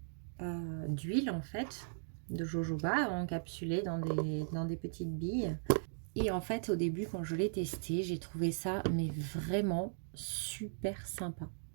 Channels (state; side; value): silent; left; digital silence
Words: d'huile en fait, de jojoba encapsulées dans des petites billes. Et en fait, au début, quand je l'ai testé, j'ai trouvé ça mais vraiment super sympa.